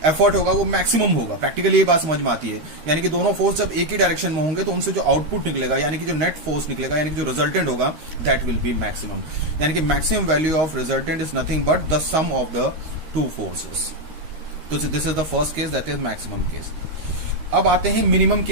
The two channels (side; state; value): left; late; 13 ms